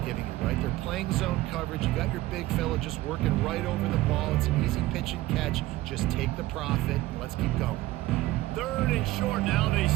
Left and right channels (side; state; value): left; quieter; 17.2 dB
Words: you, right? They're playing zone coverage. You got your big fella just working right over the ball. It's an easy pitch and catch. Just take the profit and let's keep going. 3rd and short now. They